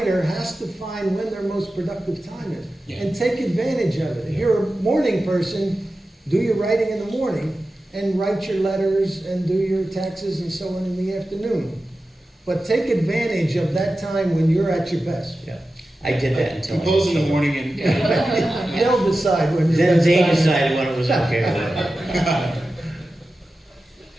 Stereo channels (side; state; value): both; normal; correlation 0.93